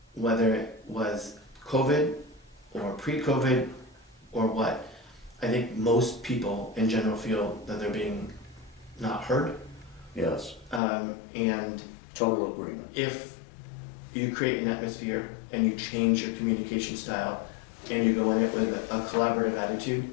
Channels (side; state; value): right; drops out; at 10.8 s